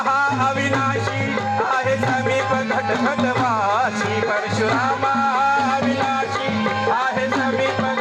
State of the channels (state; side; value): identical; both; correlation 1.00